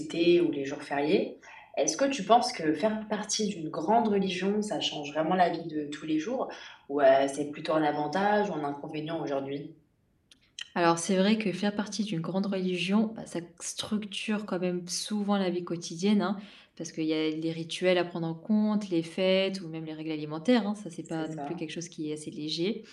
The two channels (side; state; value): both; identical; correlation 1.00